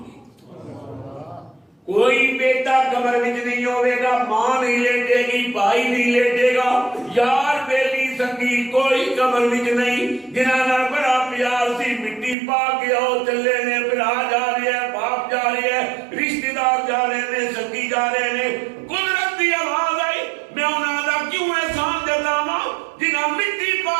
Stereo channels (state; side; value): drops out; left; at 12.4 s